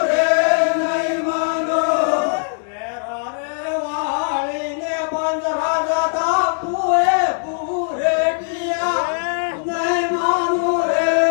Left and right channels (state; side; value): silent; right; 66 dB below the other